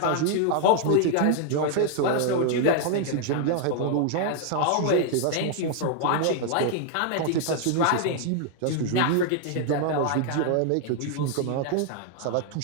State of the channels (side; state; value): both; different; correlation 0.00